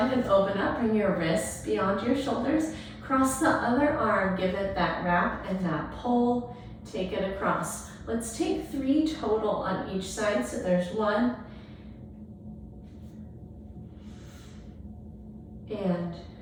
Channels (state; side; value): identical; both; correlation 1.00